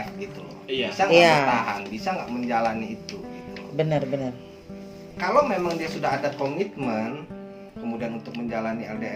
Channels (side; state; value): both; identical; correlation 1.00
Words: gitu loh, Iya. bisa nggak bertahan, bisa nggak menjalani itu gitu loh. Benar. Kalau memang dia sudah ada komitmen, kemudian untuk menjalani